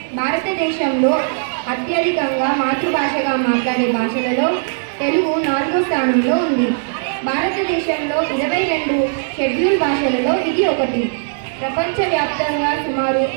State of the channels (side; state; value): left; silent; digital silence